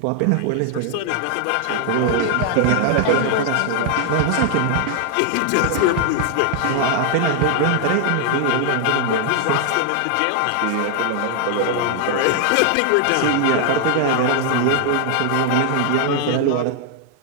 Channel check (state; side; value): different; both; correlation 0.00